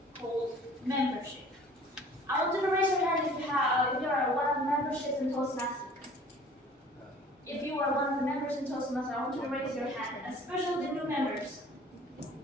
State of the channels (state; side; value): normal; both; correlation 0.49